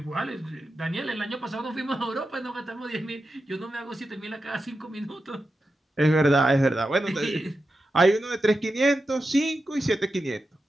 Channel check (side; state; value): both; normal; correlation 0.90